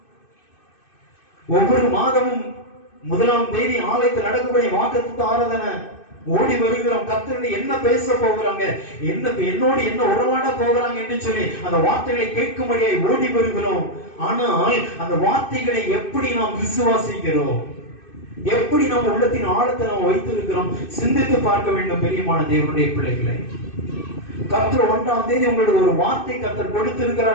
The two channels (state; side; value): late; right; 2.6 ms